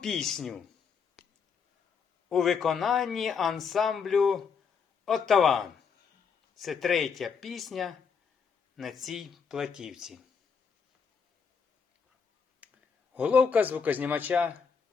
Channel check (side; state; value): right; quieter; 6.1 dB